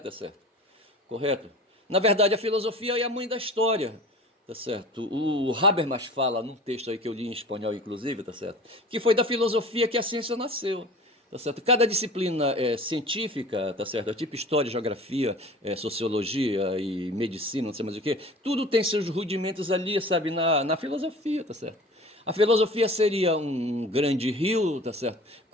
tá certo? Correto? Na verdade, a filosofia é a mãe da História. Tá certo? O Habermas fala num texto aí que eu li em espanhol, inclusive, tá certo? Que foi da filosofia que a ciência nasceu. Tá certo? Cada disciplina científica, tá certo? Tipo história, geografia, sociologia e medicina, não sei mais o que, tudo tem seus rudimentos ali, sabe, na filosofia, tá certo? A filosofia seria um grande rio, tá certo?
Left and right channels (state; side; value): normal; both; correlation 0.40